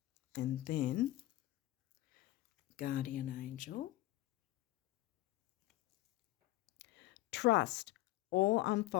And then Guardian angel. Trust. All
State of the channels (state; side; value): quieter; right; 16.7 dB